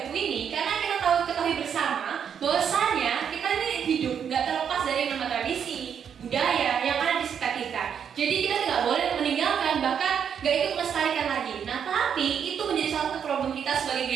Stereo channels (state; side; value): quieter; left; 7.8 dB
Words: buku ini? Karena kita ketahui bersama bahwasanya kita ini hidup nggak terlepas dari nama tradisi, budaya yang ada di sekitar kita. Jadi kita tidak boleh meninggalkan, bahkan nggak ikut melestarikan lagi. Nah, tapi itu menjadi salah satu problem kita sebagai